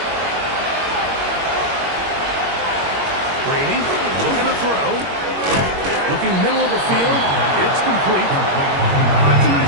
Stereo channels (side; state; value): left; late; 21 ms